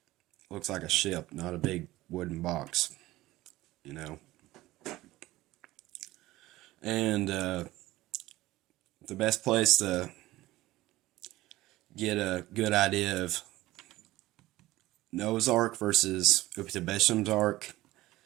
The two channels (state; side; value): quieter; left; 17.5 dB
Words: looks like a ship, not a big wooden box, you know. And the best place to get a good idea of Noah's Ark versus Uptabesham's Ark